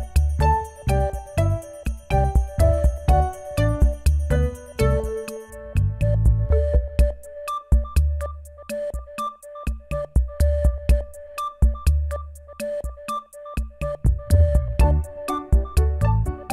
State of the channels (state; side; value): identical; both; correlation 1.00